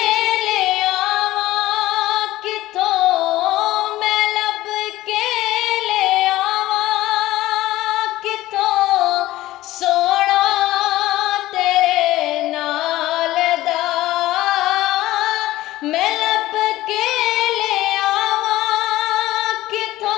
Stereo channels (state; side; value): quieter; right; 16.2 dB